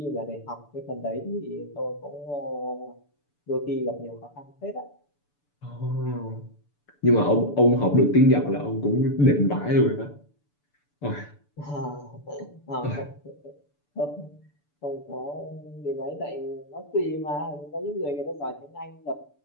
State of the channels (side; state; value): right; late; 6.9 ms